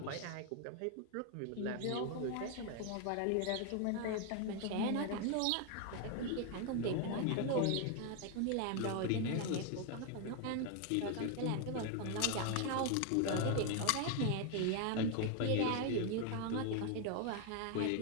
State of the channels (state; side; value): different; both; correlation 0.01